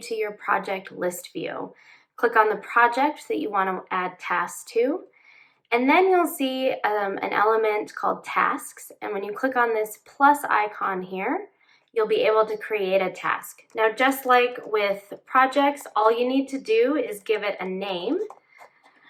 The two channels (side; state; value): both; identical; correlation 1.00